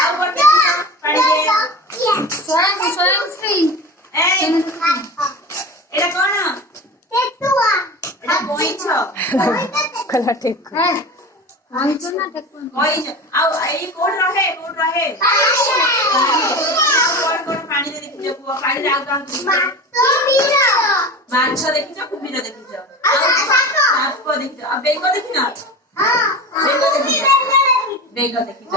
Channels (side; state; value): both; normal; correlation 0.30